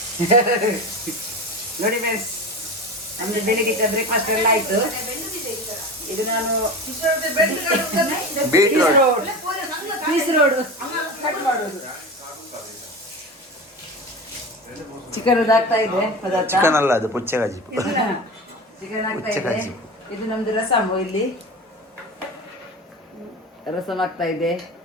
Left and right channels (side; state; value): both; normal; correlation 0.28